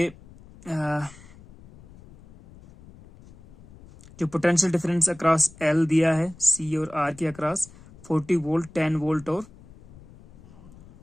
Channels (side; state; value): left; noise; rumble, 22 dB below the sound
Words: जो पोटेंशियल डिफरेंस अक्रॉस L दिया है, C और R के अक्रॉस 40 वोल्ट, 10 वोल्ट और